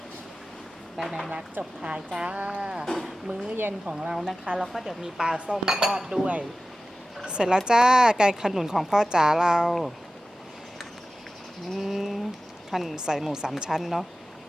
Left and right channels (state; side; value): normal; both; correlation 0.96